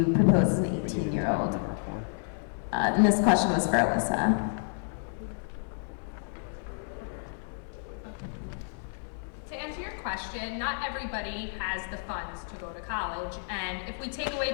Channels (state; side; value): silent; right; digital silence